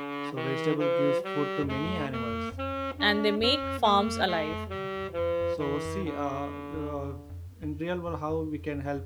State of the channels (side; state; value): both; identical; correlation 1.00